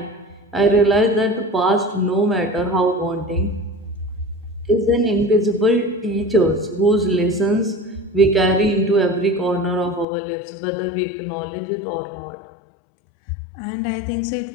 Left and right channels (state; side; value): drops out; right; at 10.1 s